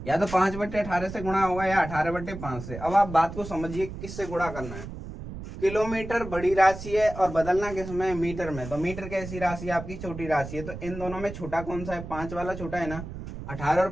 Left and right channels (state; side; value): noise; right; rumble, 10 dB below the sound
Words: या तो 5/18 से गुणा होगा या 18/5 से। अब आप बात को समझिए किससे गुणा करना है। किलोमीटर बड़ी राशि है और बदलना किसमें, मीटर में। तो मीटर कैसी राशि है आपकी, छोटी राशि है। तो इन दोनों में छोटा कौन सा है, 5 वाला छोटा है ना। 18 और